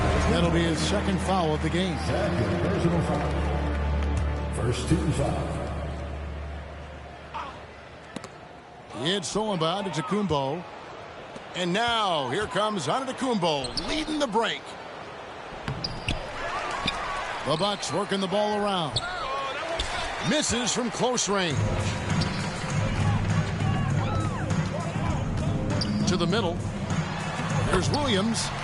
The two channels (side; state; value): both; identical; correlation 1.00